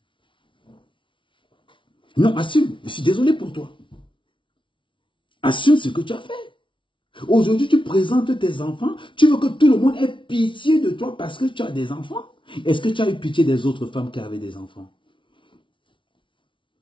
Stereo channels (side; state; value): right; late; 0.25 ms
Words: Non, assume. Je suis désolé pour toi. Assume ce que tu as fait. Aujourd'hui, tu présentes tes enfants. Tu veux que tout le monde ait pitié de toi parce que tu as des enfants. Est-ce que tu as eu pitié des autres femmes qui avaient des enfants?